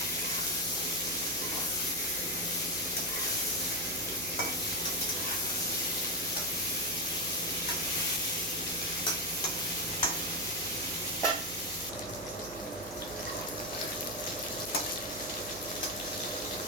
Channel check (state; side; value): noise; right; hum, 16 dB below the sound